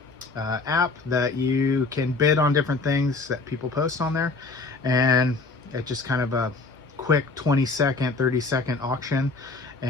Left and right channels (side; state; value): right; quieter; 3.6 dB